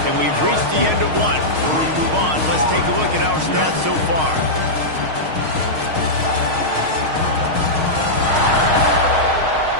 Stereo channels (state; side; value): late; left; 6.4 ms